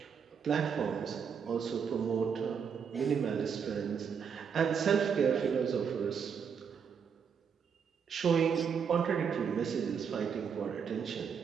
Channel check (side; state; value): left; quieter; 6.8 dB